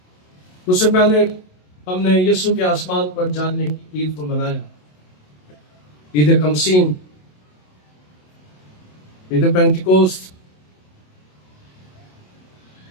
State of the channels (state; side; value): late; right; 27 ms